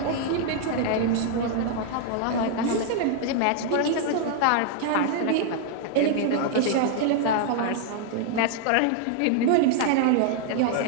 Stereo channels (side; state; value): both; different; correlation 0.00